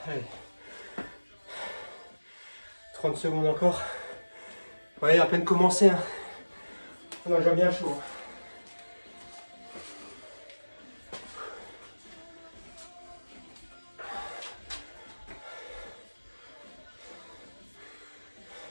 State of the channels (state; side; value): inverted; both; correlation -1.00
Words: Allez. 30 secondes encore. Vous voyez, à peine commencé. Hein. On a déjà bien chaud. Hein.